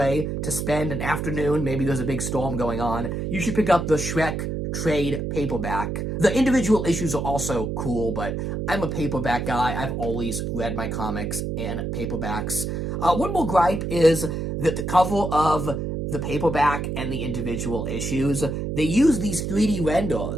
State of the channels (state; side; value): noise; right; hum, 3 dB below the sound